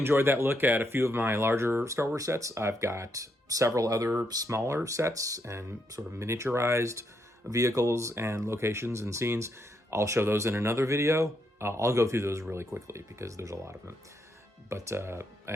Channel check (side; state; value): both; normal; correlation 0.78